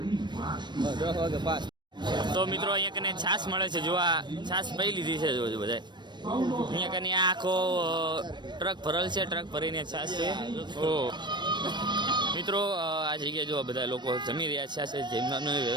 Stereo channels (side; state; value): left; late; 0.22 ms